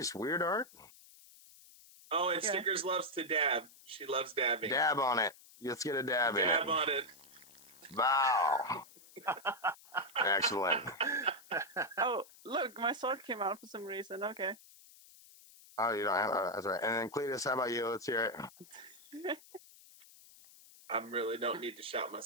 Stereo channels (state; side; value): noise; left; hiss, 22 dB below the sound